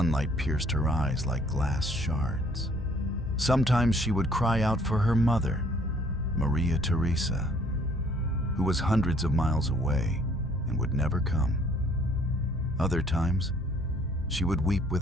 pierced her eyes like glass shards. Sometimes she would cry out for her mother, Maria Theresa, who was hundreds of miles away and would never come. Other times, she would weep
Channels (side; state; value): both; normal; correlation 0.61